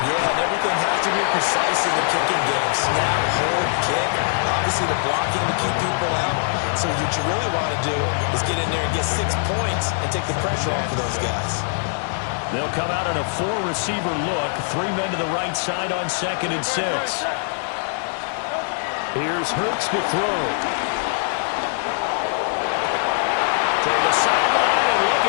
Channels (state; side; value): silent; right; digital silence